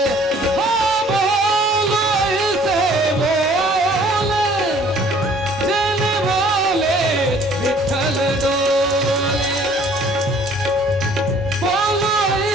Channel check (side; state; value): both; normal; correlation 0.55